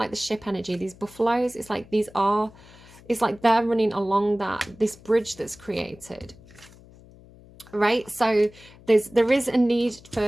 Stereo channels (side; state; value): left; noise; hum, 23 dB below the sound